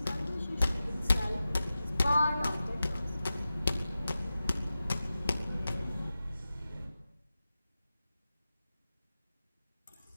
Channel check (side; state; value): both; inverted; correlation -0.95